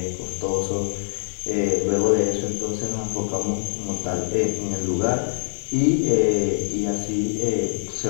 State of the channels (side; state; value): right; silent; digital silence